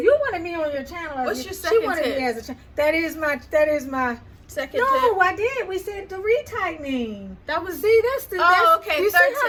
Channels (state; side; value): identical; both; correlation 1.00